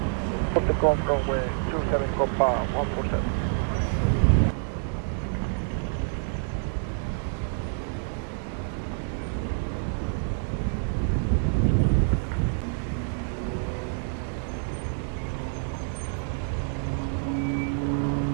Off the Gulf runway 27, Copa 147.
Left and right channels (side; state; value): left; silent; 60 dB below the other